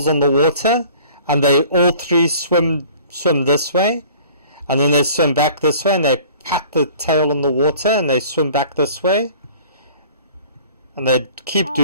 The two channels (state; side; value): inverted; both; correlation -0.49